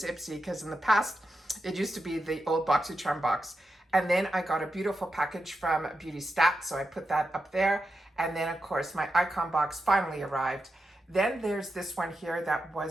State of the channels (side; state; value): both; normal; correlation 0.88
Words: Ipsy, because in the past, it used to be the old BoxyCharm box. And then I got a beautiful package from Beauty Stat, so I put that up there. And then, of course, my icon box finally arrived. Then there's this one here that